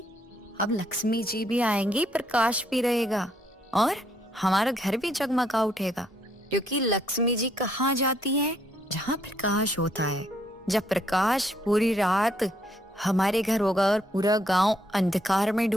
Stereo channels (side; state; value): both; normal; correlation 0.71